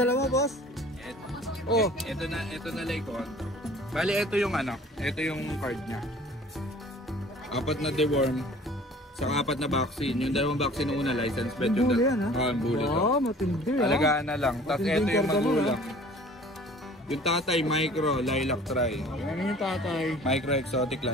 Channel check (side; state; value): both; normal; correlation 0.48